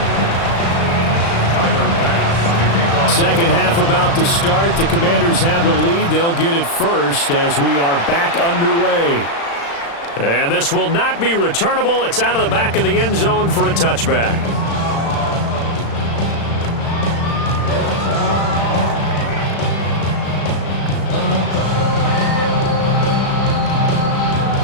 Second half about to start. The Commanders have the lead. They'll get it first as we are back underway. And this will not be returnable. It's out of the back of the end zone for a touchback.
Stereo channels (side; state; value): right; late; 35 ms